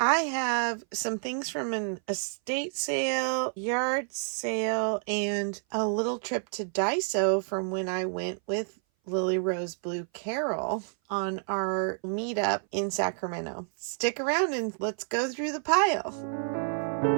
have some things from an estate sale, yard sale, and a little trip to Daiso from when I went with Lily Rose Blue Carol on our meetup in Sacramento. Stick around and let's go through the pile.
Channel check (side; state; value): left; silent; 57 dB below the other